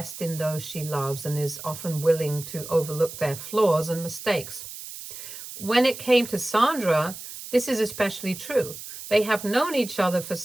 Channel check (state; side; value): noise; right; hiss, 11 dB below the sound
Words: in those she loves and is often willing to overlook their flaws and mistakes. When it came to Sandra, this is especially true. They have known each other for